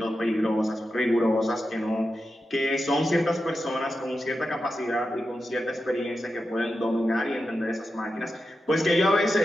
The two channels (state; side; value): normal; both; correlation 0.90